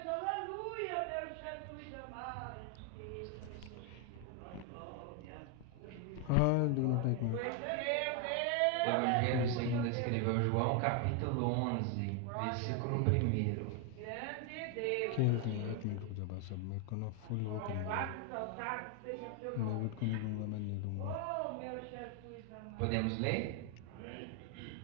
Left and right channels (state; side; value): different; both; correlation 0.01